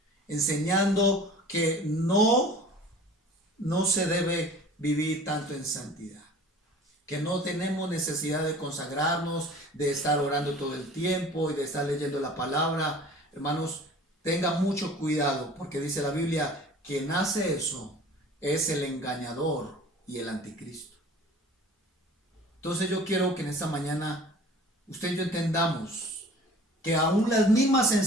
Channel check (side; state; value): both; normal; correlation 0.44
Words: enseñando que no se debe vivir tanto en santidad, que no tenemos necesidad de consagrarnos, de estar orando todo el tiempo y de estar leyendo la palabra. Hermanos, tengan mucho cuidado porque dice la Biblia, quien hace eso es el engañador y el anticristo. Entonces yo quiero que en esta mañana usted y yo entendamos que aún las mismas